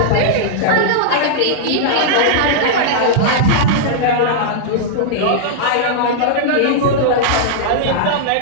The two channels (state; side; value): different; both; correlation -0.02